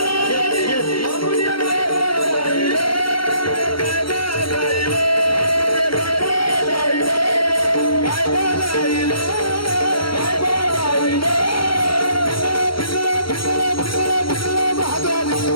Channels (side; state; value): right; late; 0.74 ms